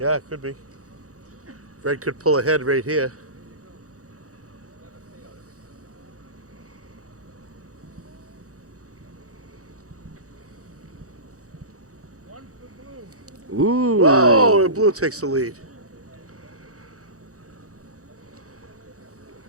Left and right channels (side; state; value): left; late; 0.65 ms